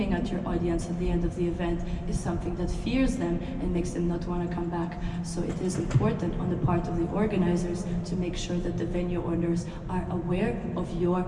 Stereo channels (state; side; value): identical; both; correlation 1.00